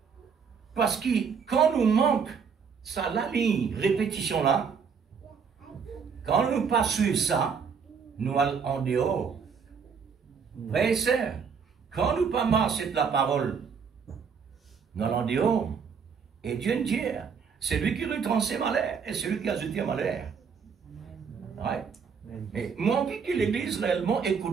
parce que quand nous manque ça, la ligne répétition là, quand nous pas suivre ça, nous allons en dehors. Frères et sœurs, quand nous pas marcher de la parole, nous allons en dehors. Et Dieu nous dit, c'est lui qui retransmet malheur et c'est lui qui a jeté malheur. Ouais. Mais moi, envie que l'Église réellement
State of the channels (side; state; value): left; quieter; 6.3 dB